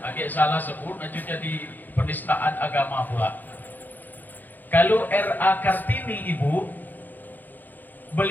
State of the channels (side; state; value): right; late; 0.086 ms